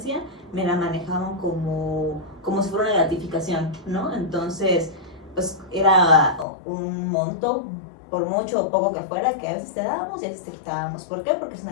me la manejaban como si fuera una gratificación, ¿no? Entonces, pues era un monto, por mucho o poco que fuera, que a veces te dábamos y a veces te quitábamos. ¿Por qué? Porque es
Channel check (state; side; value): drops out; right; at 6.5 s